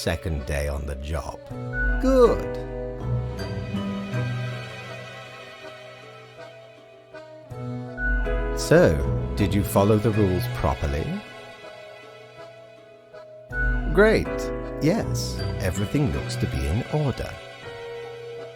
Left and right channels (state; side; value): identical; both; correlation 1.00